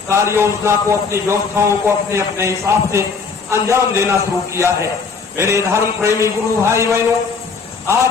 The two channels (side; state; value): right; quieter; 5.0 dB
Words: कार्य योजना को, अपनी व्यवस्थाओं को अपने अपने हिसाब से अंजाम देना शुरू किया है। मेरे धर्म प्रेमी गुरु भाई बहनों,